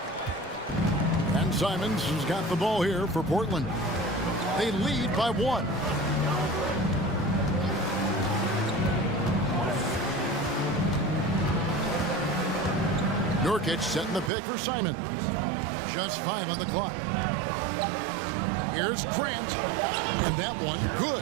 And Simons has got the ball here for Portland. They lead by 1. Nurkic setting the pick for Simons. Just 5 on the clock. Here's Grant. And that one,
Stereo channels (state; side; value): drops out; left; at 14.3 s